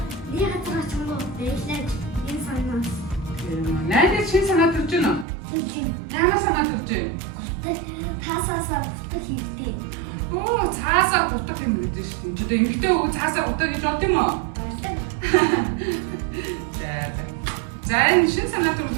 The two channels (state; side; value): drops out; left; at 5.2 s